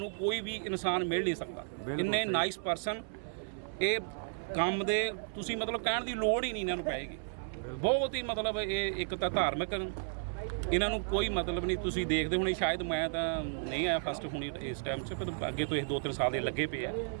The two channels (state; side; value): silent; left; 55 dB below the other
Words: ਕੋਈ ਵੀ ਇਨਸਾਨ ਮਿਲ ਨਹੀਂ ਸਕਦਾ। ਇੰਨੇ ਨਾਈਸ ਪਰਸਨ, ਇਹ ਕੰਮ ਦੇ ਤੁਸੀਂ ਮਤਲਬ ਕਹਿਣ ਦੀ ਲੋੜ ਹੀ ਨਹੀਂ ਇਹਨਾਂ ਨੂੰ ਪਏਗੀ। ਬਹੁਤ ਹੀ ਮਤਲਬ ਇਹ ਇੱਕ ਤਾਂ ਧਾਰਮਿਕ, ਇਹਨਾਂ ਨੂੰ ਕੋਈ ਮਤਲਬ ਨਹੀਂ। ਤੁਸੀਂ ਦੇਖਦੇ ਹੋਣੇ, ਸ਼ਾਇਦ ਮੈਂ ਤਾਂ ਨਹੀਂ ਆਇਆ ਫਸਟ ਹੁਣੀ ਇਸ ਟਾਈਮ 'ਚ, ਪਰ ਅੱਗੇ ਤੋਂ ਇਹ 2-3 ਸਾਲ ਦੇ ਲੱਗੇ ਪਏ ਆ।